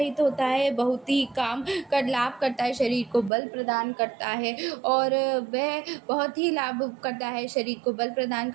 होता है, बहुत ही काम कर लाभ करता है, शरीर को बल प्रदान करता है और वह बहुत ही लाभ करता है, शरीर को बल प्रदान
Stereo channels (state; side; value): drops out; left; at 3.3 s